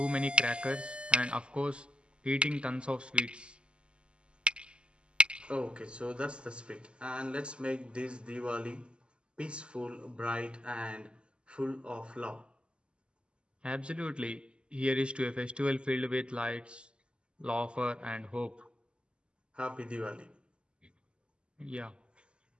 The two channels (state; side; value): late; left; 0.052 ms